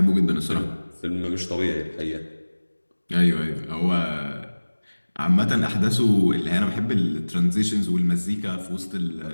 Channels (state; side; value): inverted; both; correlation -1.00